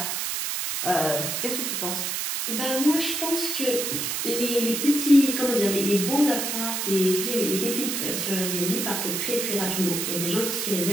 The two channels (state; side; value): noise; right; hiss, 1 dB below the sound